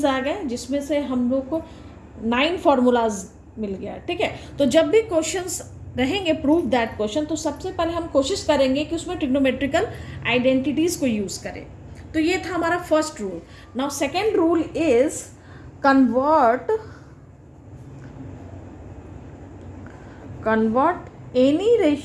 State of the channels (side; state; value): both; identical; correlation 1.00